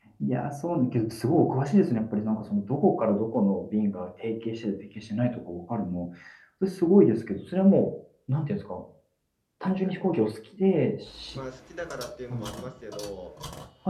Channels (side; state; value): both; identical; correlation 1.00